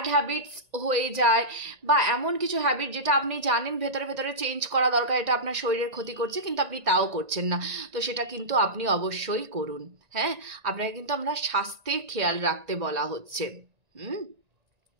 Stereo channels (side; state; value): left; late; 1.9 ms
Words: হ্যাবিটস হয়ে যায়, বা এমন কিছু হ্যাবিট যেটা আপনি জানেন ভেতরে ভেতরে চেঞ্জ করা দরকার, এটা আপনার শরীরের ক্ষতি করছে, কিন্তু আপনি তাও করছেন না। তো সেটা কিন্তু আপনি অবশ্যই করুন। হ্যাঁ, আপনাকে কিন্তু আমরা স্বাস্থ্যের খেয়াল রাখতে বলা হচ্ছে,